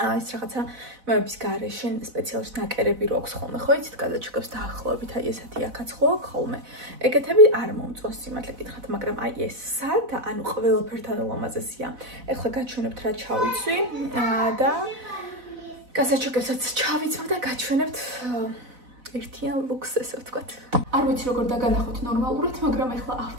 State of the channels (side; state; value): left; late; 4.0 ms